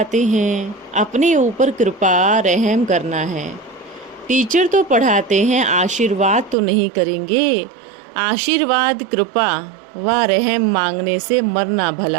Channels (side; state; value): left; drops out; at 6.6 s